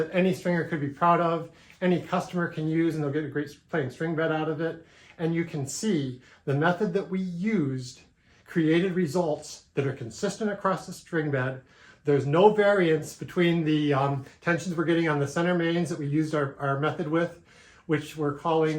any stringer could be proud of, any customer can use, and they'll get a great playing string bed out of it. And you can see the method that we used created results that are consistent across the string bed. There's no variance between the tensions we're getting on the center mains that we used our method with, which we're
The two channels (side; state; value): both; identical; correlation 1.00